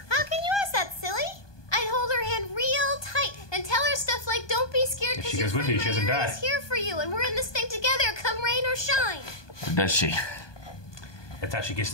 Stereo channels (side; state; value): right; late; 1.2 ms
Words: How can you ask that, silly? I'd hold her hand real tight and tell her stuff like, "Don't be scared, If because she your goes with friend you, she doesn't Marietta die. is here for you, and we're in this thing together, come rain or shine." Or does she? That's how she gets